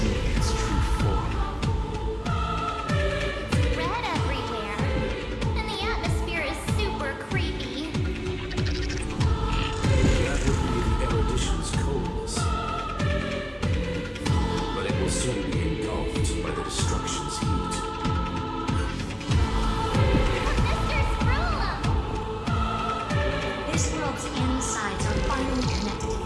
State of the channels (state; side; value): identical; both; correlation 1.00